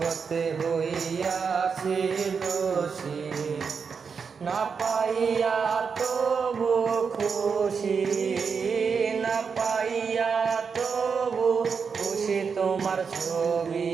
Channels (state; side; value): quieter; left; 5.8 dB